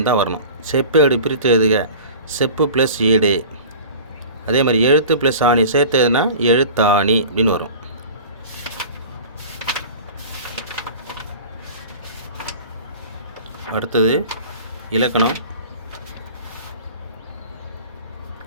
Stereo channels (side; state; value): both; inverted; correlation -0.40